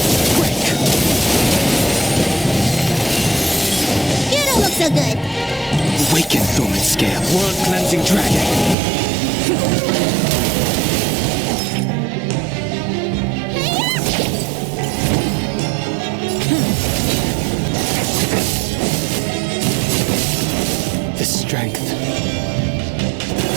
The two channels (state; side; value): drops out; left; at 8.8 s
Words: Break. You don't look so good. Awaken, Thoman Scale. World cleansing dragon. The strength.